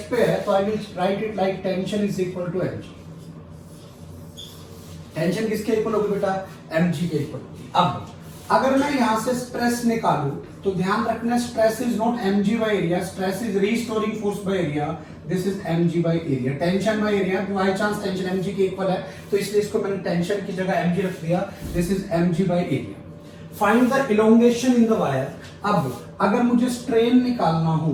पे है, तो I will write it like tension is equal to mg। Tension किसके इक्वल होगी बेटा? mg के इक्वल होगी। अब अगर मैं यहां से स्ट्रेस निकालूं तो ध्यान रखना, stress is not mg by area, stress is restoring force by area, this is mg by area. Tension by area, by chance tension mg के इक्वल है तो इसलिए इसको मैंने टेंशन की जगह mg रख दिया, this is mg by area. Find the elongation in the wire. अब अगर मुझे स्ट्रेन निकालना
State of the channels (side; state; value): both; identical; correlation 1.00